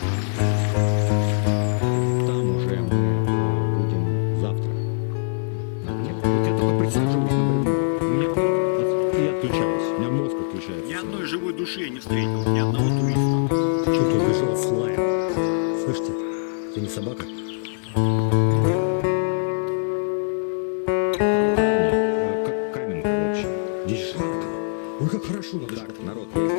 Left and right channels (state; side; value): silent; right; digital silence